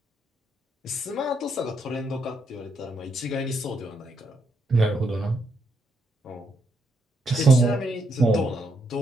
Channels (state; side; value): normal; both; correlation 0.77